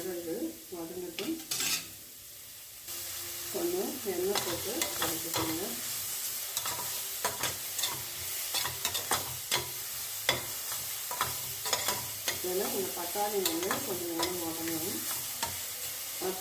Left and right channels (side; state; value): both; identical; correlation 1.00